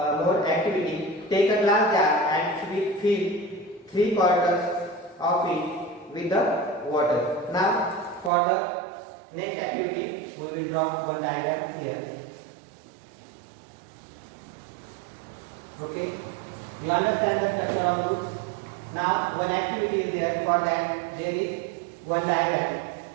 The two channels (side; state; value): left; drops out; at 8.3 s